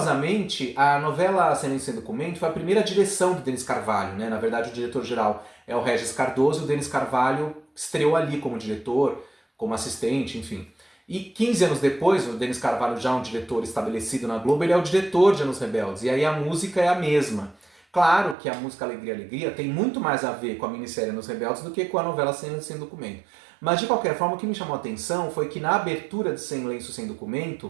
a novela Silêncio Sem Documento foi a primeira direção do Denis Carvalho, né? Na verdade, o diretor-geral é o Regis Cardoso e o Denis Carvalho estreou ali como diretor, como assistente, enfim. E 15 anos depois, o Denis Carvalho, já um diretor estabelecido na Globo, ele é o diretor de Anos Rebeldes. E aí a música é a mesma. Claro que a música Alegria, Alegria tem muito mais a ver com a minissérie Anos Rebeldes do que com a novela Silêncio Sem Documento. Mas, de qualquer forma, o que me chamou a atenção foi que na abertura de Silêncio Sem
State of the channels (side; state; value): left; drops out; at 18.4 s